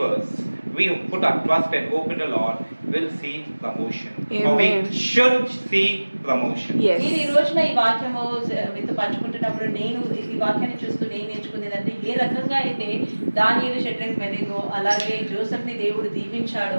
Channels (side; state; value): both; inverted; correlation -1.00